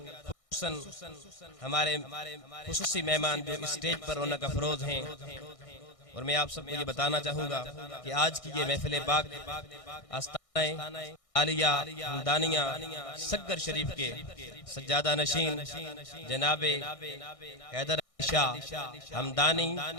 ہمارے خصوصی مہمان جو اسٹیج پر رونق افروز ہیں، اور میں آپ سب کو یہ بتانا چاہوں گا کہ آج کی یہ محفل پاک آستانہ عالیہ ہمدانیہ سگر شریف کے سجادہ نشین جناب حیدر علی شاہ ہمدانی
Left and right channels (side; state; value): right; late; 1.6 ms